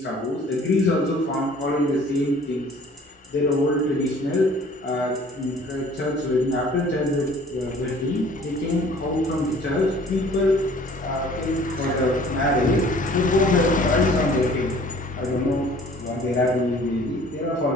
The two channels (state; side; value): normal; both; correlation 0.52